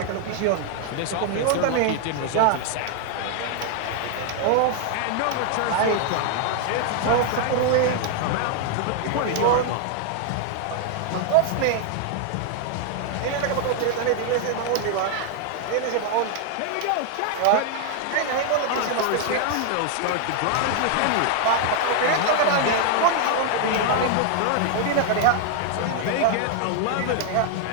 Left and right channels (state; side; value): different; both; correlation 0.00